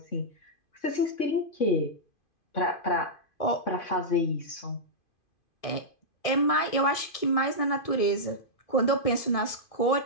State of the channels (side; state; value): right; late; 2.5 ms